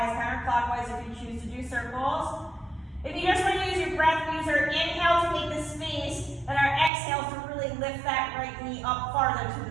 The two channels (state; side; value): drops out; left; at 6.9 s